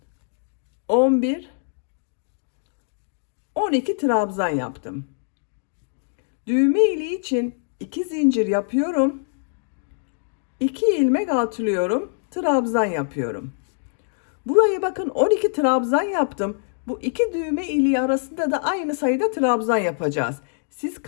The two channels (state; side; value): silent; right; digital silence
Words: 11 12 trabzan yaptım. Düğme iliği için 2 zincir yapıyorum. 2 ilmek atlıyorum. Trabzan yapıyorum. Buraya bakın 12 trabzan yaptım. Bu iki düğme iliği arasında da aynı sayıda trabzan yapacağız. Siz